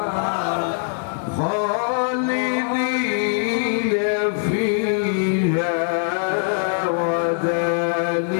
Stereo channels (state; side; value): silent; right; 64 dB below the other